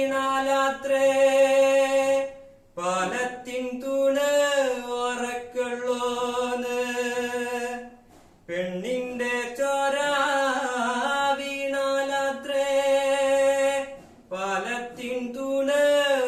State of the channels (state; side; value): identical; both; correlation 1.00